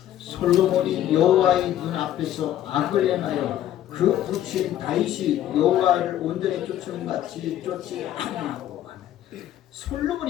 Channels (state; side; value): quieter; right; 12.0 dB